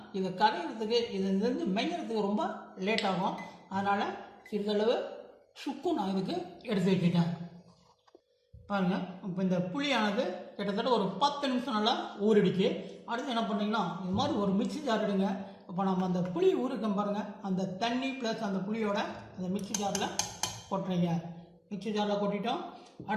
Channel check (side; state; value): both; identical; correlation 1.00